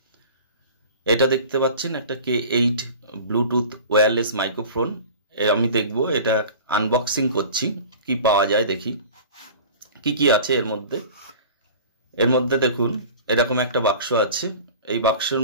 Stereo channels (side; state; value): both; inverted; correlation -0.39